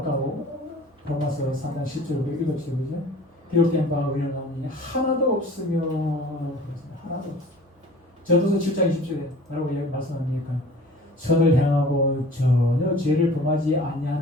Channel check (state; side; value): normal; both; correlation 0.46